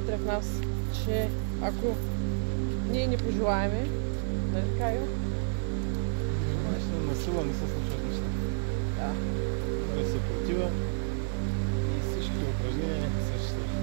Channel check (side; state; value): left; silent; digital silence